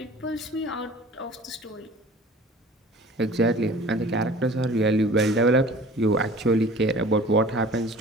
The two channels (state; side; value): normal; both; correlation 0.45